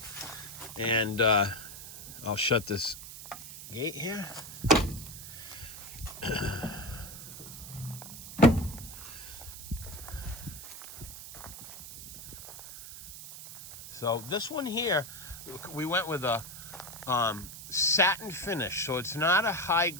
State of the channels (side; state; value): right; noise; hiss, 12 dB below the sound